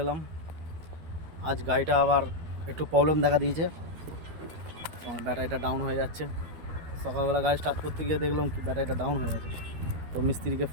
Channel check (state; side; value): late; left; 12 ms